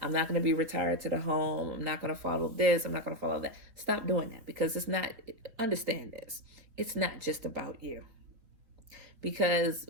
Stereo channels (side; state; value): left; late; 4.1 ms